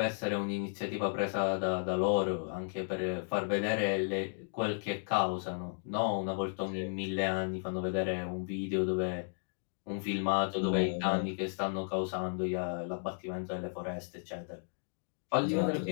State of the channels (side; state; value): right; silent; digital silence